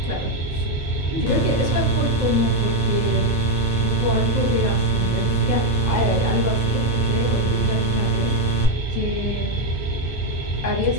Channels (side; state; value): both; normal; correlation 0.06